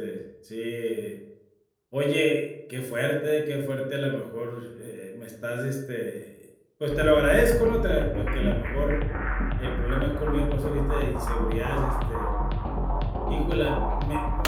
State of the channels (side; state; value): both; identical; correlation 1.00